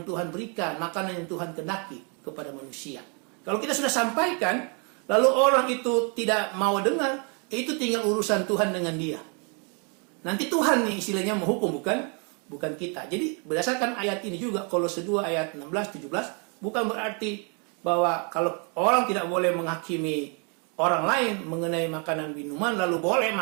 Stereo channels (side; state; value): left; quieter; 36.3 dB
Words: Tuhan berikan, makanan yang Tuhan kehendaki kepada manusia. Kalau kita sudah sampaikan, lalu orang itu tidak mau dengar, itu tinggal urusan Tuhan dengan dia. Nanti Tuhan nih istilahnya menghukum, bukan kita. Jadi berdasarkan ayat ini juga, Kolose 2 ayat 16-17, bukan berarti bahwa kalau orang tidak boleh menghakimi orang lain mengenai makanan minuman lalu boleh